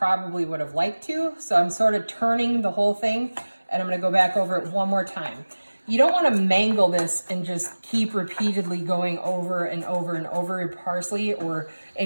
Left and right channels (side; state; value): both; inverted; correlation -1.00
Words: would have liked to, so I'm sort of turning the whole thing, and I'm gonna go back over it one more time. You don't wanna mangle this and just keep repeatedly going over and over and over your parsley or